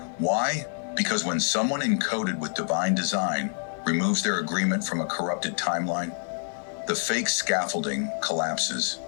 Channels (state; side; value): silent; right; digital silence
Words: Why? Because when someone encoded with divine design removes their agreement from a corrupted timeline, the fake scaffolding collapses.